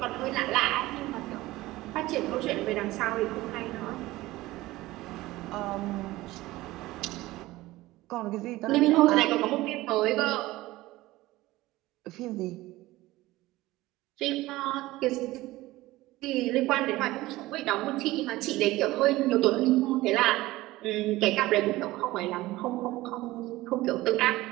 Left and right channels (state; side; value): quieter; left; 18.1 dB